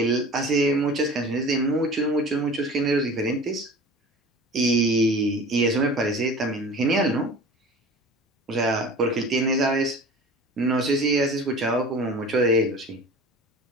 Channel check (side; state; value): both; normal; correlation 0.40